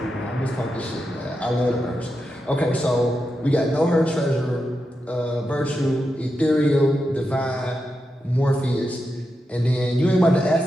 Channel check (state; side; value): normal; both; correlation 0.87